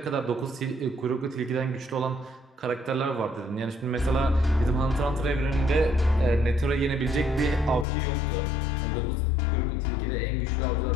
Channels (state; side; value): drops out; right; at 7.9 s